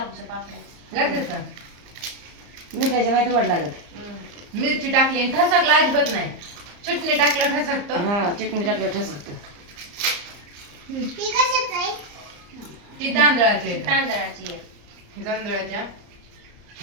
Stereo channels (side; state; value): left; late; 34 ms